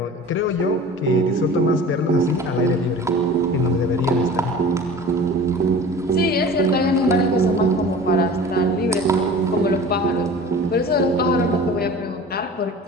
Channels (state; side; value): normal; both; correlation 0.40